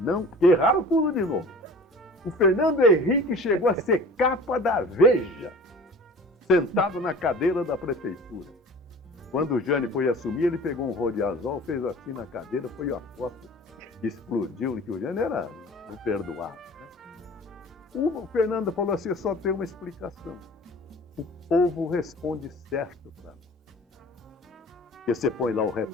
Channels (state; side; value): normal; both; correlation 0.43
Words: não, que erraram tudo de novo. O Fernando Henrique chegou a ser capa da Veja, sentado na cadeira da prefeitura. Quando o Jânio foi assumir, ele pegou um rodiazol, fez assim na cadeira, foi a foto, explodiu, que o Jânio era imperdoável. Né? O Fernando falou assim: só tem uma explicação. O povo responde certo para nós. Porque você põe lá o